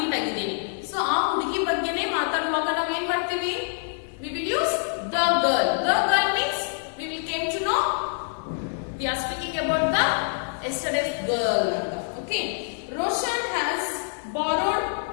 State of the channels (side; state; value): right; silent; digital silence